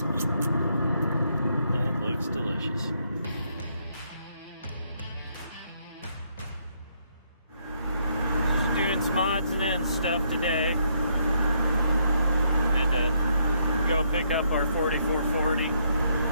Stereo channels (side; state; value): both; inverted; correlation -0.73